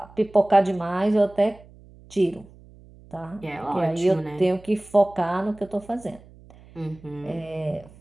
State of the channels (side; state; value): right; noise; hum, 23 dB below the sound